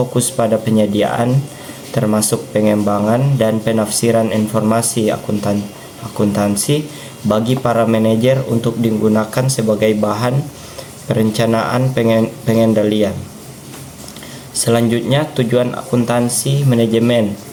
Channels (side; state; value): both; identical; correlation 1.00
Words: pada penyediaan, termasuk pengembangan dan penafsiran informasi akuntansi bagi para manajer untuk digunakan sebagai bahan perencanaan pengendalian. Selanjutnya, tujuan akuntansi manajemen.